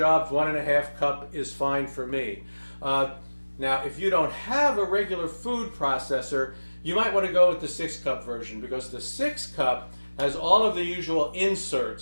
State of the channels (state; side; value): inverted; both; correlation -1.00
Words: 1.5 cup is fine for me. Now, if you don't have a regular food processor, you might want to go with the 6 cup version, because the 6 cup has all of the usual